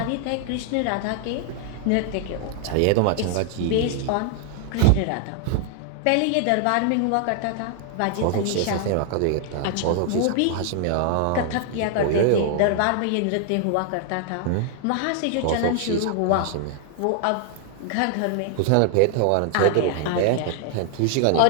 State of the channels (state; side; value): different; both; correlation 0.00